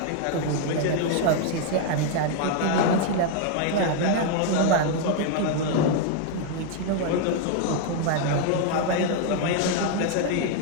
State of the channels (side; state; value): both; different; correlation 0.00